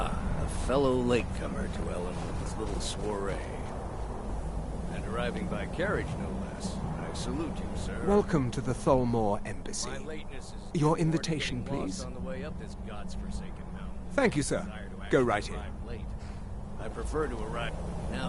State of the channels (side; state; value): both; identical; correlation 1.00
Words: a fellow latecomer to Ellenwood's little soiree. And arriving by carriage, no less. I salute you, sir. Welcome to the Tholmor Embassy. My lateness is Your invitation, please. on the way up this god's-forsaken mountain. Thank you, sir. Go right in. Arrive late. I prefer to arrive.